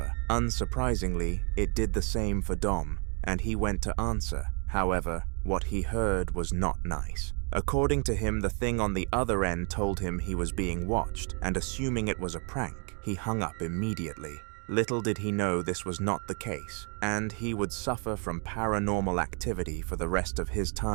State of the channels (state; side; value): quieter; left; 38.5 dB